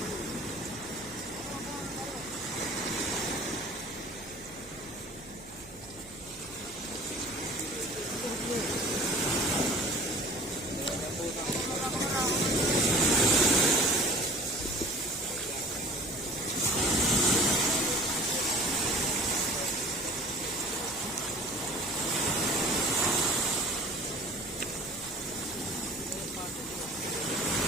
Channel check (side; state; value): right; noise; hum, 20 dB below the sound